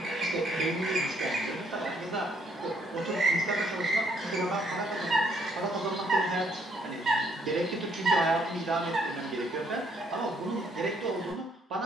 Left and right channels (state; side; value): normal; both; correlation 0.69